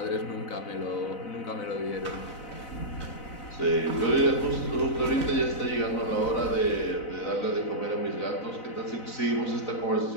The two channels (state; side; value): late; right; 4.0 ms